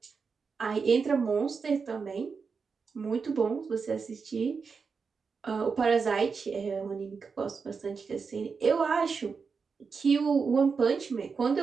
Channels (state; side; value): quieter; left; 5.3 dB